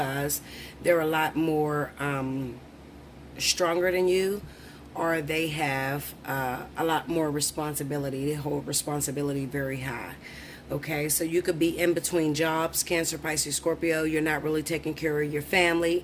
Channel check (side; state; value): both; identical; correlation 1.00